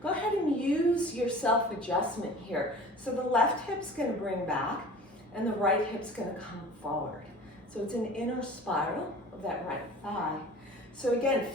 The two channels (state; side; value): normal; both; correlation 0.42